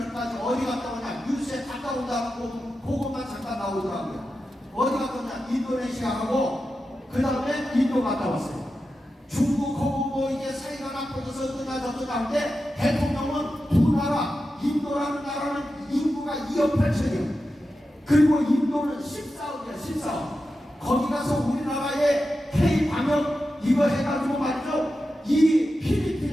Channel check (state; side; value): normal; both; correlation 0.91